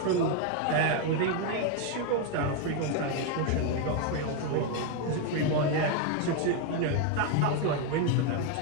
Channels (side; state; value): both; different; correlation 0.01